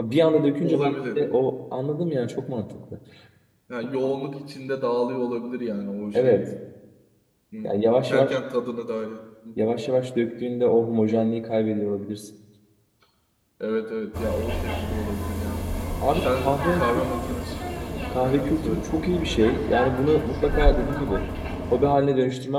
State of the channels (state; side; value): identical; both; correlation 1.00